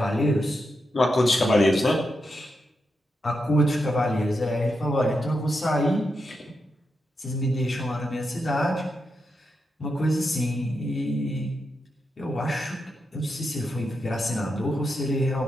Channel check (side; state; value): both; normal; correlation 0.86